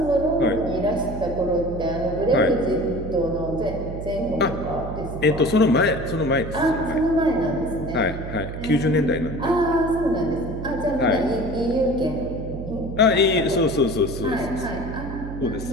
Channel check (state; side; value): noise; right; hum, 8 dB below the sound